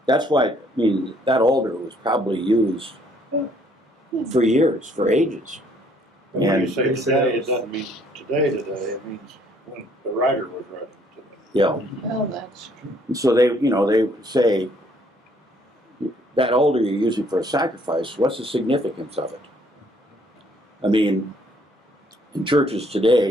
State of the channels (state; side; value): normal; both; correlation 0.64